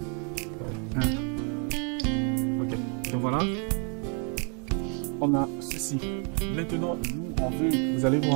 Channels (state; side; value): quieter; left; 38.3 dB